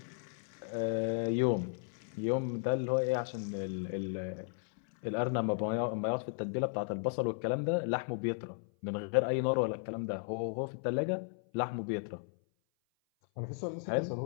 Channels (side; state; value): right; silent; 54 dB below the other